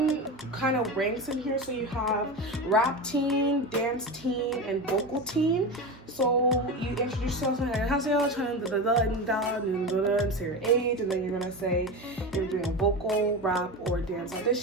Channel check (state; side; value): normal; both; correlation 0.23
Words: kind of ranks in here. So you have rap teen, dance teen, and vocal teen. So you introduce yourself and say your age, and then you're gonna say you're doing a vocal, rap, or dance